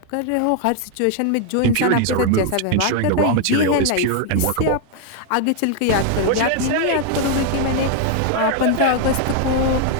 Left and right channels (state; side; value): different; both; correlation 0.00